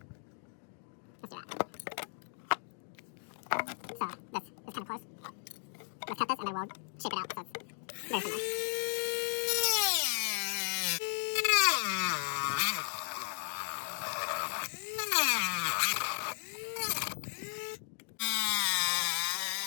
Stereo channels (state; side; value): silent; right; 54 dB below the other